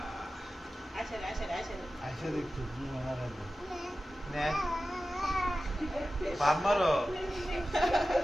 আচ্ছা দেখো কি মারা রে নে বাপ মারো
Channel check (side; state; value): both; normal; correlation 0.94